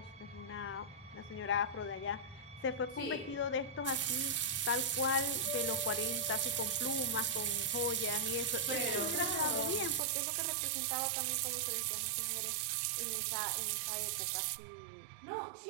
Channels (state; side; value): drops out; left; at 10.0 s